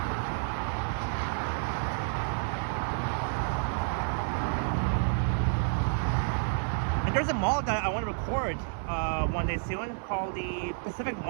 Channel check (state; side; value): silent; left; digital silence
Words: There's a mall that I want to record one day soon called the Pacific